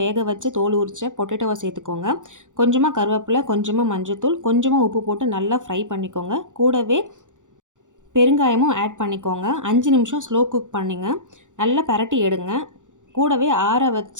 வேக வச்சு தோல் உரிச்ச பொட்டேட்டோவை சேர்த்துக்கோங்க. கொஞ்சமாக கருவேப்பிலை, கொஞ்சமாக மஞ்சத்தூள், கொஞ்சமாக உப்பு போட்டு நல்லா ஃப்ரை பண்ணிக்கோங்க. கூடவே பெருங்காயமும் ஆட் பண்ணிக்கோங்க. 5 நிமிஷம் ஸ்லோ குக் பண்ணிங்க. நல்லா பரட்டி எடுங்க. கூடவே ஆற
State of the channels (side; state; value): left; late; 0.87 ms